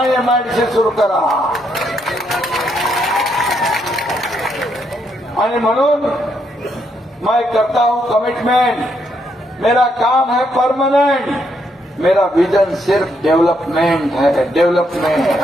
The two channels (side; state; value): both; normal; correlation 0.76